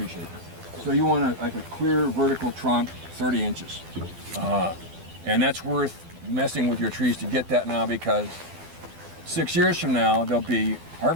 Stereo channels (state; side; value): late; left; 12 ms